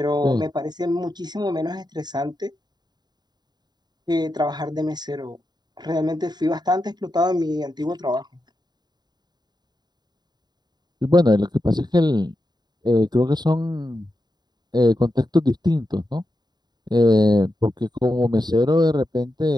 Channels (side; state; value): left; late; 0.20 ms